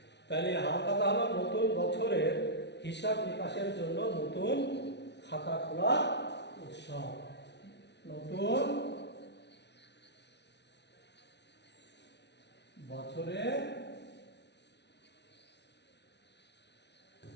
তাহলে হাল খাতা হলো নতুন বছরের হিসাব নিকাশের জন্য নতুন খাতা খোলা উৎসব। নতুন বছরের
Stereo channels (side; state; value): right; late; 0.50 ms